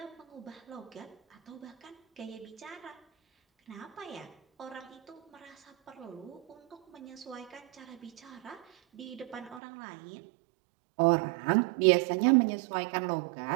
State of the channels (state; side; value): drops out; left; at 9.6 s